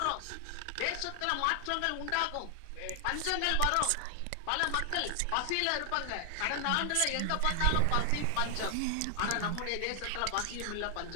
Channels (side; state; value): both; different; correlation 0.00